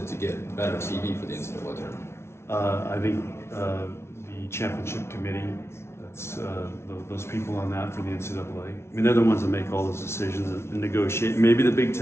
to get better TV for the NCAA tournament? I think the championship committee. That's those people on that for the NCAA. I mean, they're the ones that make all those decisions and negotiate. Maybe the Big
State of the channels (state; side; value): late; right; 0.13 ms